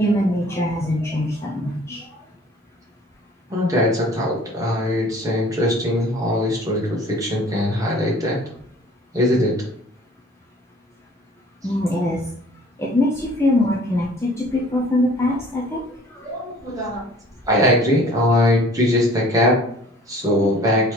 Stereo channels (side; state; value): both; normal; correlation 0.51